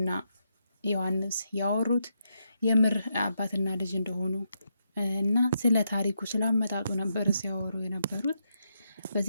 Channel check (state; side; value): inverted; both; correlation -0.82